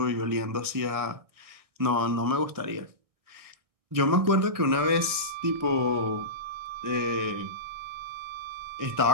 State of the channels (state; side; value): late; left; 1.6 ms